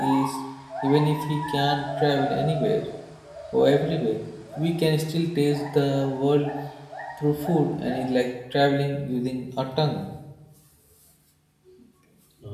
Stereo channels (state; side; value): identical; both; correlation 1.00